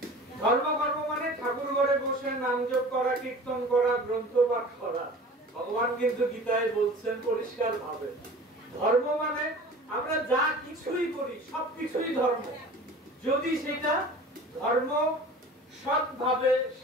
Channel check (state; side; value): normal; both; correlation 0.41